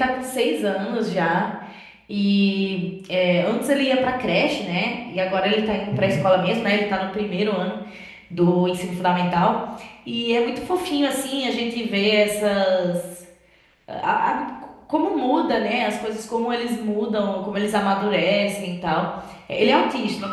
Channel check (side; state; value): both; identical; correlation 1.00